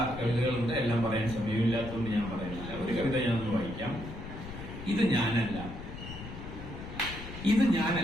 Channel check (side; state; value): left; noise; rumble, 10 dB below the sound